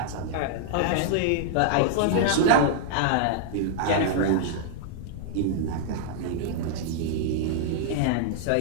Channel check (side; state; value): both; different; correlation -0.01